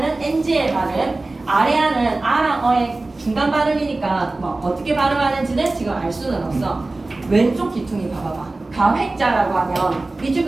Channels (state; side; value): quieter; left; 3.1 dB